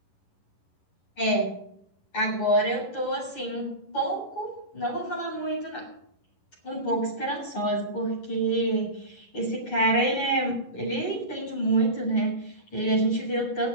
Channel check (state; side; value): late; right; 11 ms